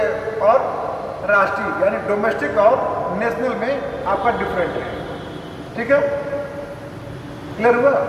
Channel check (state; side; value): identical; both; correlation 1.00